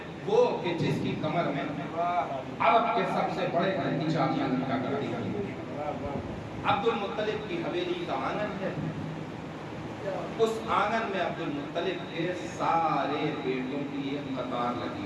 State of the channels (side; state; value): both; identical; correlation 1.00